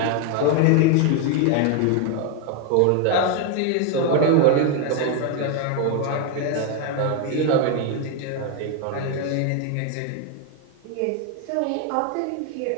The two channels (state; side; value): different; both; correlation 0.01